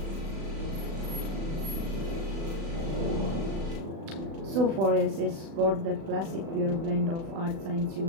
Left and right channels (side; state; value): left; late; 36 ms